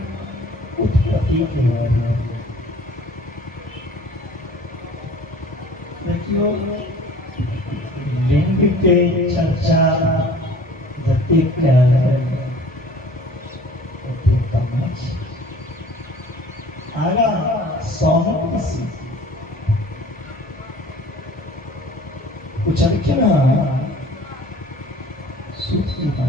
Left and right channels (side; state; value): both; normal; correlation 0.48